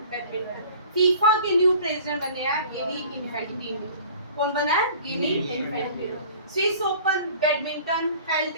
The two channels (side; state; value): both; inverted; correlation -0.47